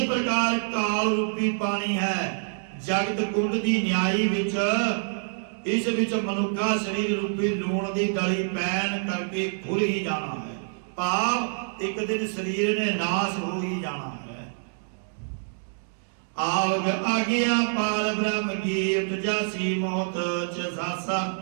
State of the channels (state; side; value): silent; left; digital silence